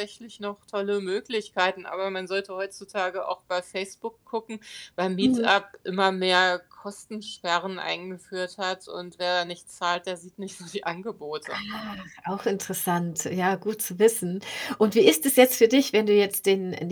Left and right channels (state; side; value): identical; both; correlation 1.00